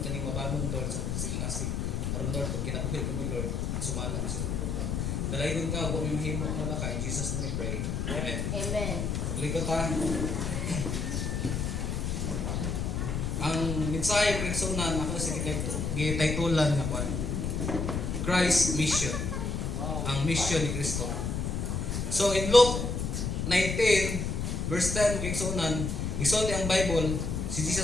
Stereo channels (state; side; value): noise; left; rumble, 1 dB below the sound